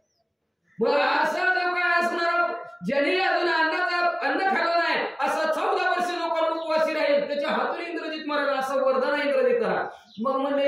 बरं असं जो काय असणार ज्यांनी अजून अन्न खाल्लं नाही असं 14 वर्ष लोकांना उपवासी राहील त्याच्या हातून इंद्रजित मारेल असं वरदान आहे इंद्रजिताला. मग म्हणले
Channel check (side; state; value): both; identical; correlation 1.00